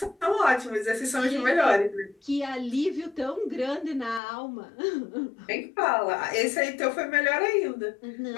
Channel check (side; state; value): right; drops out; at 4.2 s